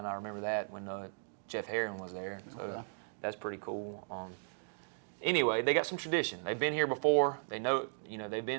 I remember that when Jeff Herron was there. So that's pretty cool. Anyway, they got some tradition. They've been here before. They know, they've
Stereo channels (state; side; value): silent; left; digital silence